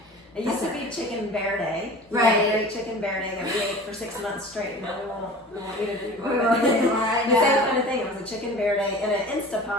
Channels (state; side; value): normal; both; correlation 0.39